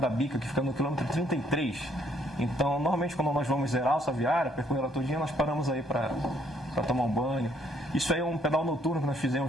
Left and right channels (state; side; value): normal; both; correlation 0.67